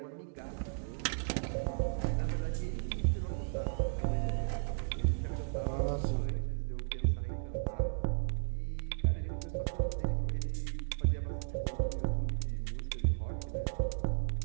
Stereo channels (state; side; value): silent; left; digital silence